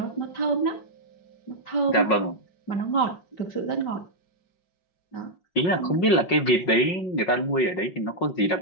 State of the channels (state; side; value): late; right; 5.5 ms